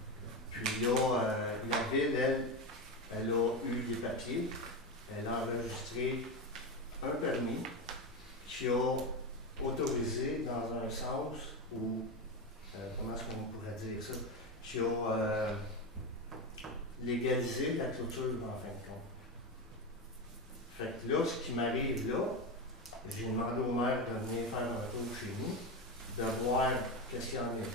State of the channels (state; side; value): normal; both; correlation 0.16